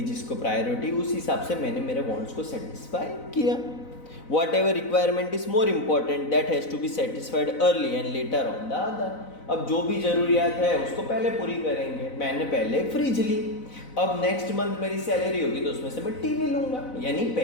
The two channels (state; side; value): late; right; 4.0 ms